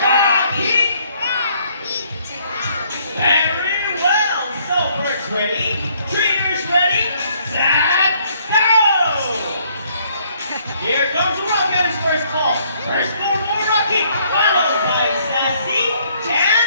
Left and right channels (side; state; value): both; inverted; correlation -0.65